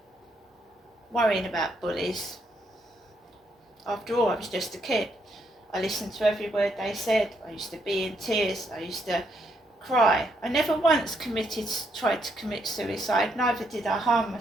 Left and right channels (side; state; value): both; normal; correlation 0.75